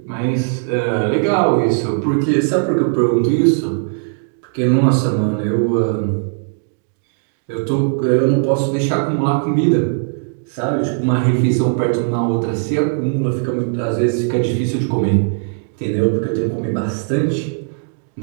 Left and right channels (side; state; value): left; silent; digital silence